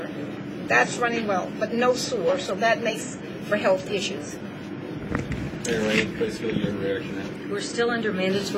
That's running well, but no sewer, so that makes for health issues. We're still under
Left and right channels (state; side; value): identical; both; correlation 1.00